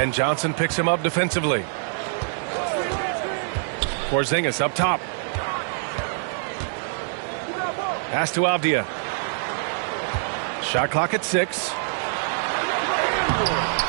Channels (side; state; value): left; silent; digital silence